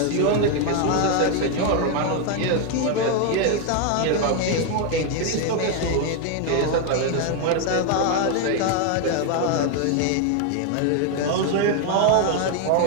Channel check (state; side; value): different; both; correlation 0.01